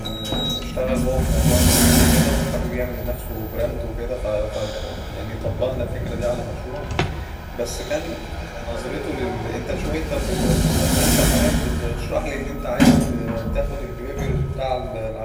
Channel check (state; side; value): identical; both; correlation 1.00